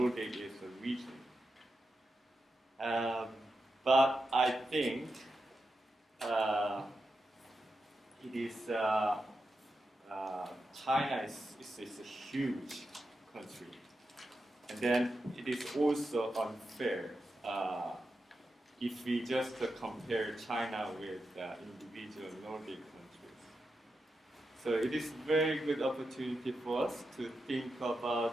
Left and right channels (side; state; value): both; normal; correlation 0.88